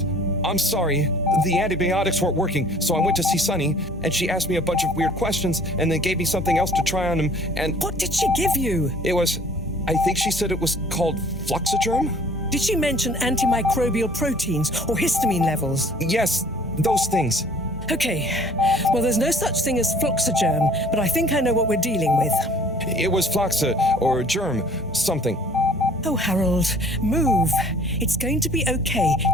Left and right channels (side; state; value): both; normal; correlation 0.53